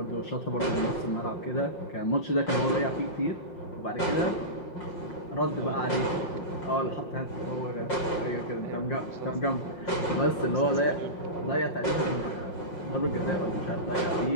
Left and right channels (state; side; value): late; right; 5.5 ms